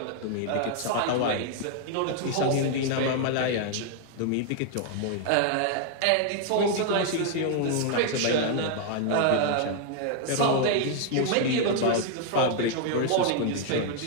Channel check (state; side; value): different; both; correlation 0.00